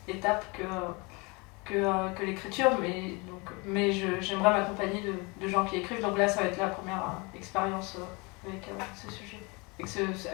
étape que l'écriture, mais j'aimerais m'accompagner de gens qui écrivent. Donc là, ça va être la première expérience avec ce sujet,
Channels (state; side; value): quieter; right; 27.9 dB